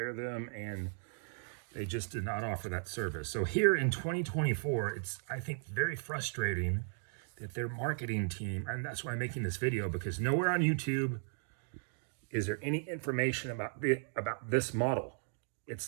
them. And they just did not offer that service. So here in 2024, it's, I think, very frustrating that their marketing team, and that's why I'm making this video, because nowhere on YouTube is there any information about this model.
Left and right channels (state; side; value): silent; left; 54 dB below the other